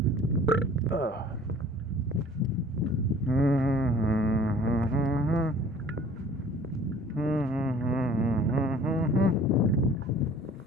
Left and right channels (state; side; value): normal; both; correlation 0.49